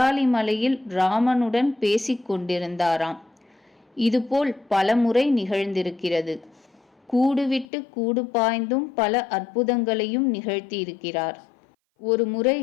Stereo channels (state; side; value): drops out; right; at 7.7 s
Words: ராமனுடன் பேசிக் கொண்டிருந்தாராம். இதுபோல் பலமுறை நிகழ்ந்திருக்கிறது. கூடுவிட்டு கூடு பாய்ந்தும் பல அற்புதங்களையும் நிகழ்த்தியிருக்கிறார். ஒரு